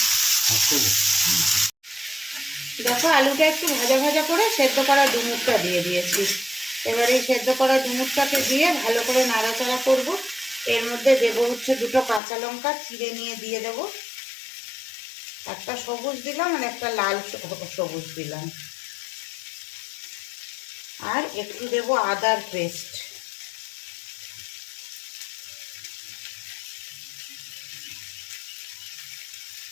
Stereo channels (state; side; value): drops out; right; at 12.2 s